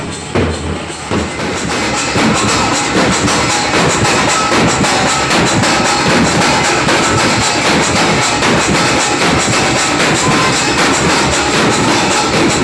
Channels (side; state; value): both; identical; correlation 1.00